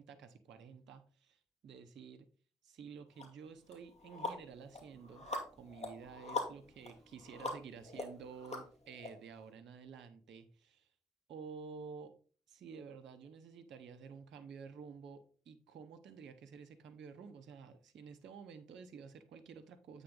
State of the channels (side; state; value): both; normal; correlation 0.33